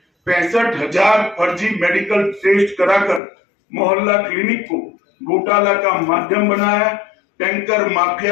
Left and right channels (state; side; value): drops out; right; at 3.2 s